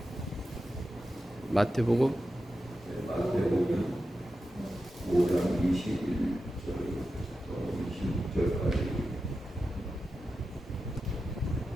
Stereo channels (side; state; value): both; normal; correlation 0.91